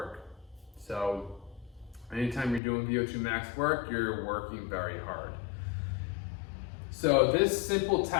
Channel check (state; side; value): drops out; right; at 2.6 s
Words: So anytime you're doing Vo2 Max work, you're working very hard. So this simple